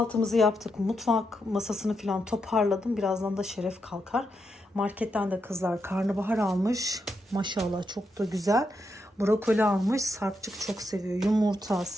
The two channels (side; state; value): both; normal; correlation 0.83